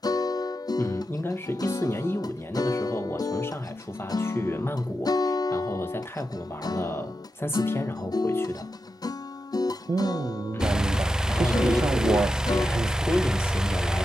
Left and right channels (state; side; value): normal; both; correlation 0.88